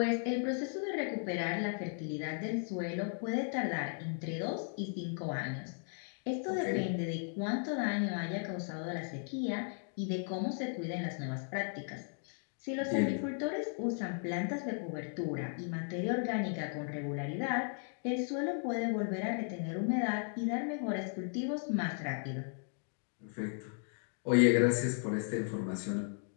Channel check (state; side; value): silent; right; 54 dB below the other